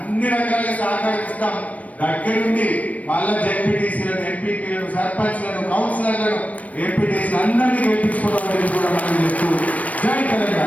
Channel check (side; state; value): right; late; 0.068 ms